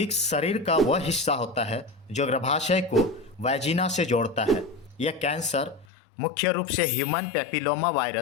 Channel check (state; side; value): drops out; right; at 5.9 s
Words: शरीर का वह हिस्सा होता है जो गर्भाशय को वैजिना से जोड़ता है। यह कैंसर मुख्य रूप से ह्यूमन पैपिलोमा